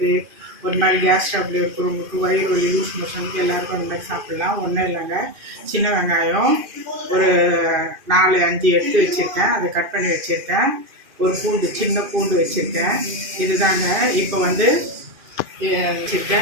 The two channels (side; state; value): left; late; 2.5 ms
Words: ஒரு மாதிரி கேஸ் ட்ரபிள் இருக்கிறவங்களுக்கு, வயிறு வலி, லூஸ் மோஷனுக்கு எல்லாருக்கும் அந்த மாதிரி சாப்பிட்லாம். ஒன்றும் இல்லைங்க, சின்ன வெங்காயம் ஒரு 4-5 எடுத்து வச்சுருக்கேன், அதை கட் பண்ணி வச்சுருக்கேன். ஒரு பூண்டு, சின்ன பூண்டு வச்சுருக்கேன். இதுதாங்க. இப்போ வந்து